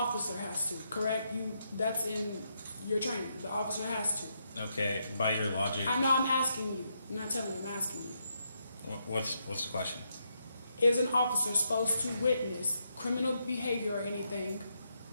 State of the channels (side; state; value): both; inverted; correlation -0.80